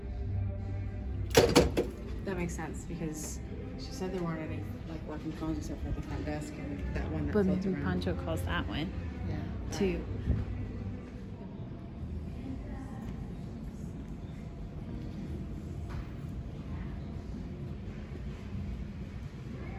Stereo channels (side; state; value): both; identical; correlation 1.00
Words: That makes sense because she said there weren't any like working phones except for the front desk and that one that But floats maybe around. Pancho calls that one Yeah. too.